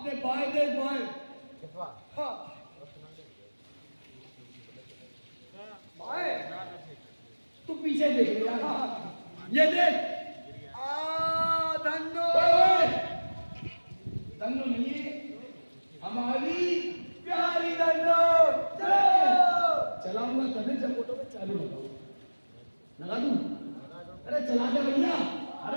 अपने बाएं देख बाएं। हाँ बाएं तू पीछे देख ले यार। ये देख। धन्नो धन्नो नहीं हमारी प्यारी धन्नो। चलाऊंगा तभी जब फोटो पे चालू लगा दूं। अरे चला दे भैया।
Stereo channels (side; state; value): both; inverted; correlation -1.00